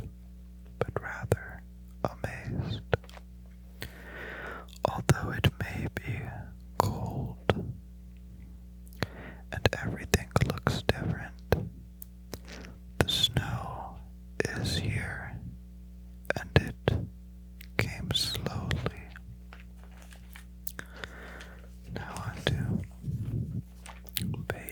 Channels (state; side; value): identical; both; correlation 1.00